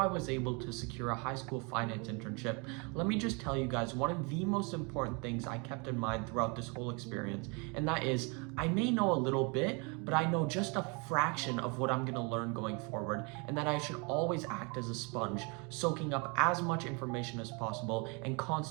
was able to secure a high school finance internship, let me just tell you guys one of the most important things I kept in mind throughout this whole experience, and that is I may know a little bit, but I know just a fraction of what I'm going to learn going forward, and that I should always act as a sponge, soaking up as much information as possible and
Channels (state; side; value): quieter; left; 31.9 dB